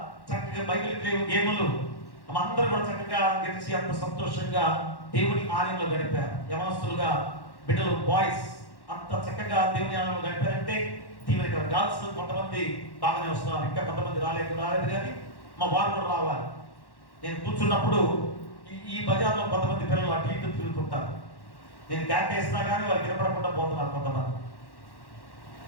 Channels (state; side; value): late; right; 1.1 ms